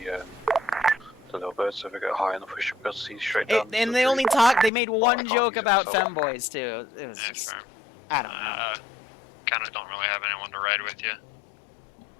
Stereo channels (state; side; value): drops out; right; at 4.7 s